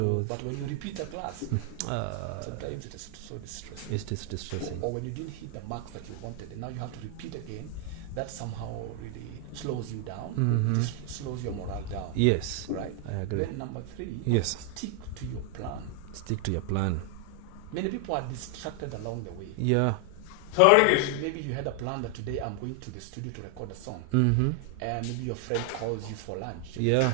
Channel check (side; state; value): both; different; correlation 0.00